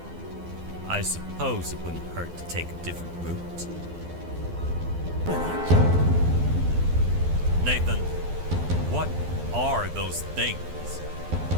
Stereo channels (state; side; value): late; left; 12 ms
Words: I suppose it wouldn't hurt to take a different route. Nathan, what are those things?